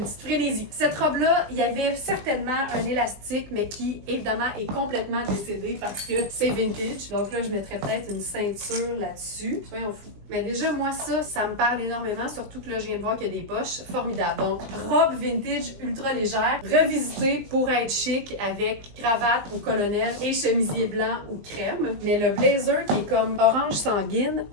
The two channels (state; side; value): late; left; 20 ms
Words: petite frénésie. Cette robe-là, il y avait certainement un élastique, mais qui, évidemment, est complètement décédé parce que c'est vintage. Donc là, je mettrais peut-être une ceinture là-dessus. Soyons fous. Mais déjà, moi, ça me parle énormément, surtout que là, je viens de voir qu'il y a des poches. Formidable. Donc, robe vintage ultra légère, revisitée pour être chic avec cravate ou colonel et chemisier blanc ou crème. Mais le blazer qui est comme orange sanguine